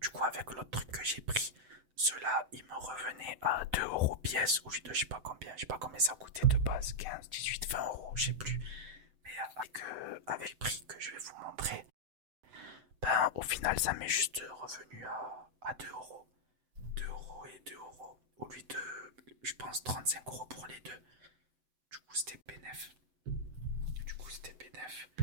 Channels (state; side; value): late; left; 7.8 ms